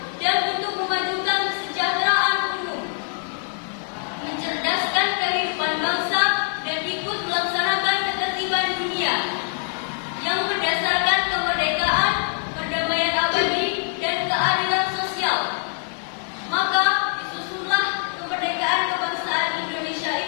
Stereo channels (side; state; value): right; silent; 63 dB below the other